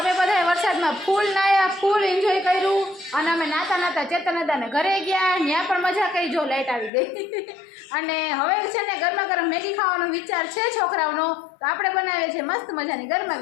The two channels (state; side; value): drops out; right; at 6.9 s